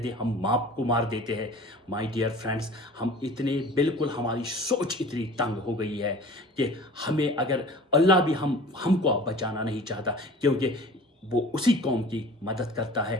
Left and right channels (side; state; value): both; normal; correlation 0.43